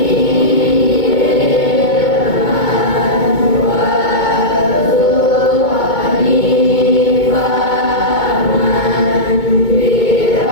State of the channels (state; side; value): late; right; 2.2 ms